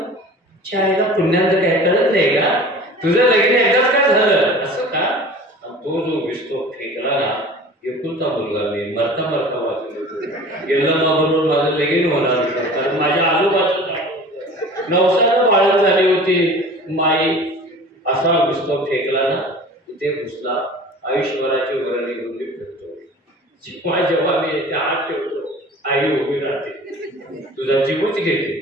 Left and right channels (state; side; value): normal; both; correlation 0.41